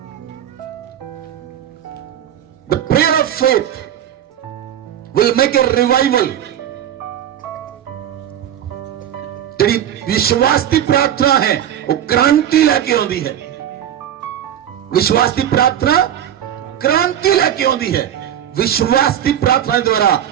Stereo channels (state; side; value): quieter; left; 10.4 dB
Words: The prayer of faith will make a revival। ਜਿਹੜੀ ਵਿਸ਼ਵਾਸ ਦੀ ਪ੍ਰਾਰਥਨਾ ਹੈ ਉਹ ਕ੍ਰਾਂਤੀ ਲੈ ਕੇ ਆਉਂਦੀ ਹੈ। ਵਿਸ਼ਵਾਸ ਦੀ ਪ੍ਰਾਰਥਨਾ ਕ੍ਰਾਂਤੀ ਲੈ ਕੇ ਆਉਂਦੀ ਹੈ। ਵਿਸ਼ਵਾਸ ਦੀ ਪ੍ਰਾਰਥਨਾ ਦੇ ਦੁਆਰਾ